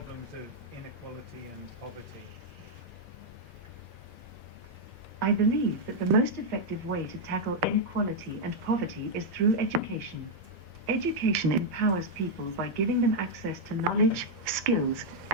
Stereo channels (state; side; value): normal; both; correlation -0.02